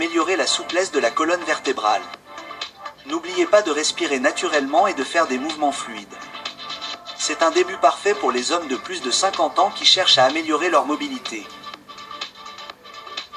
la souplesse de la colonne vertébrale. N'oubliez pas de respirer naturellement et de faire des mouvements fluides. C'est un début parfait pour les hommes de plus de 50 ans qui cherchent à améliorer leur mobilité.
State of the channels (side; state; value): both; identical; correlation 1.00